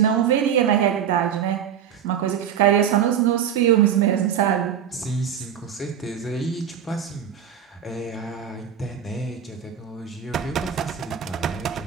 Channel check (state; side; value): quieter; left; 8.8 dB